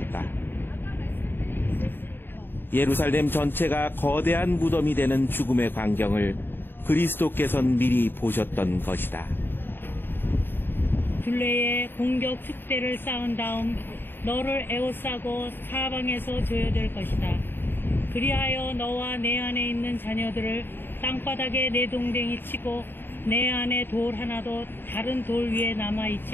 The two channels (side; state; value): right; late; 0.098 ms